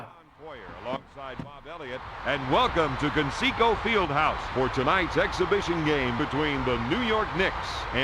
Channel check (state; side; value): identical; both; correlation 1.00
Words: Alongside Bob Elliott, and welcome to Conseco Fieldhouse for tonight's exhibition game between the New York Knicks